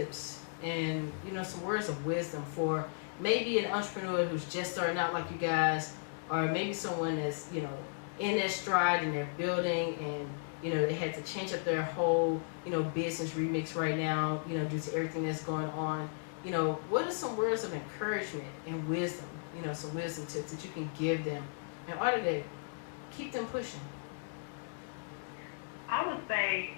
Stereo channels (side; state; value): right; silent; digital silence